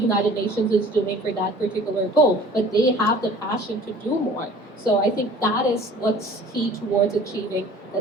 Nations is doing for that particular goal, but they have the passion to do more. So I think that is what's key towards achieving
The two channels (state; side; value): normal; both; correlation 0.48